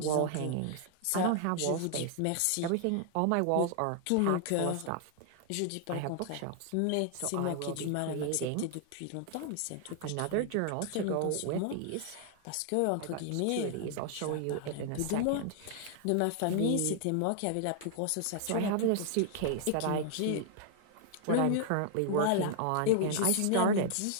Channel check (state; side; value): different; both; correlation 0.00